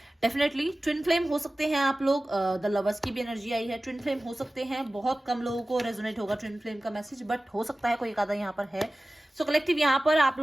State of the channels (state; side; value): normal; both; correlation 0.96